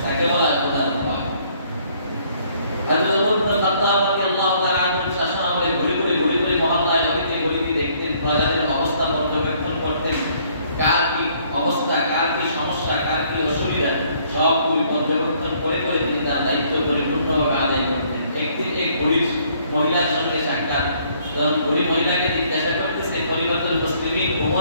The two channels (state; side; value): inverted; both; correlation -0.64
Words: তাকে বলা হয় খোদার ভয়। হযরত ওমর ইবনে খাত্তাব রাদিয়াল্লাহু তাআলা আনহু শাসন আমলে ঘুরে ঘুরে মহল্লায় গলিতে দেখতেন, প্রজাদের অবস্থা পর্যবেক্ষণ করতেন, কার কি অবস্থা, কার কি সমস্যা, কার কি অসুবিধা, সবগুলি পর্যবেক্ষণ করে তিনি তার দায়িত্ব পরিপূর্ণভাবে আদায় করতেন। একদিন এক গরিব মহিলার সঙ্গে সাক্ষাৎ, তখন গরিব মহিলাকে জিজ্ঞাসা করতেছে, খলিফাতুল মুসলিমিন